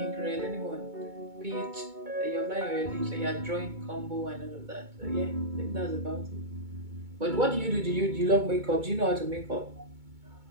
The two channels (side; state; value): left; late; 2.2 ms